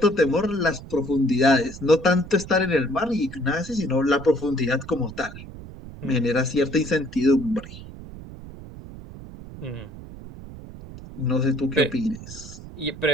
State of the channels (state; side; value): noise; right; rumble, 14 dB below the sound